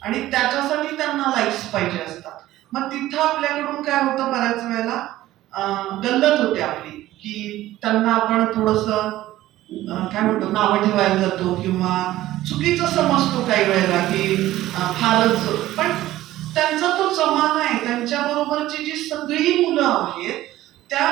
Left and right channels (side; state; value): left; quieter; 15.2 dB